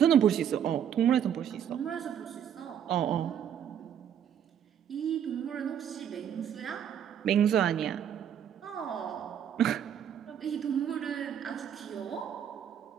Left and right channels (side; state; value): left; quieter; 9.2 dB